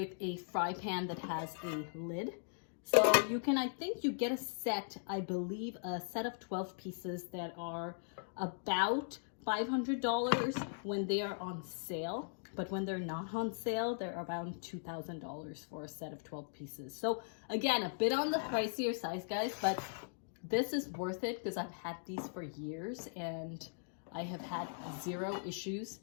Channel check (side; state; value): right; silent; digital silence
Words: a fry pan that has a lid. So you can, I think you get a set, I believe a set of 12 pieces that are about $500 when they are on sale. But when they're not on sale, they're around $2,000 for a set of 12 pieces. So again, a bit on the pricier size, guys, but this is worth it because I've had these for years and I have had 0 issues